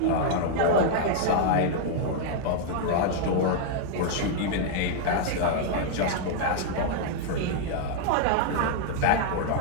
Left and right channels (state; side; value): different; both; correlation -0.01